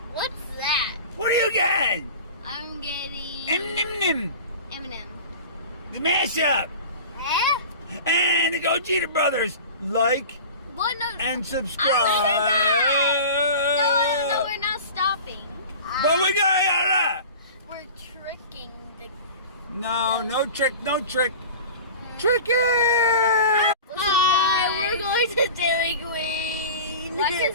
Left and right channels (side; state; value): both; inverted; correlation -0.36